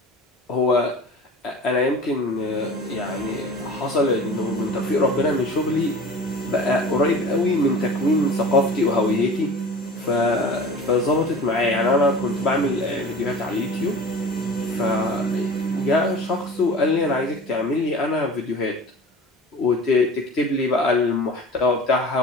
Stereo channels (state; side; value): normal; both; correlation 0.39